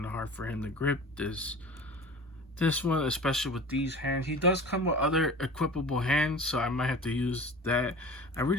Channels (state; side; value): normal; both; correlation 0.38